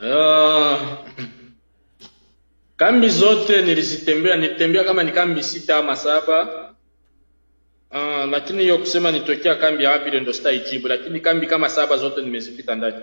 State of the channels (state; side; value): inverted; both; correlation -1.00